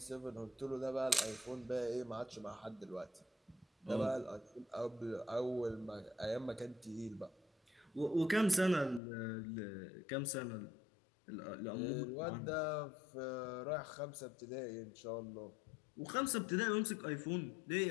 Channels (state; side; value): drops out; right; at 9.0 s